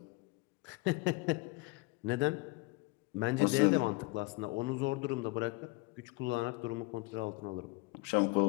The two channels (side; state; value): right; quieter; 24.0 dB